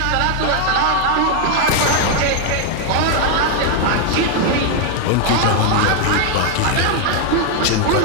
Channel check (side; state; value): both; different; correlation 0.01